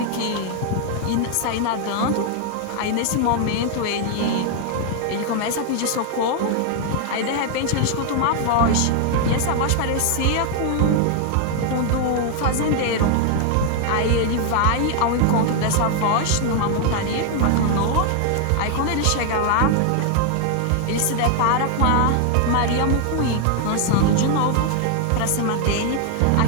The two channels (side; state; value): both; different; correlation 0.01